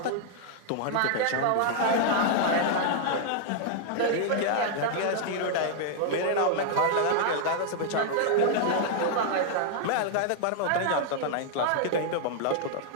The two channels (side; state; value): both; different; correlation -0.01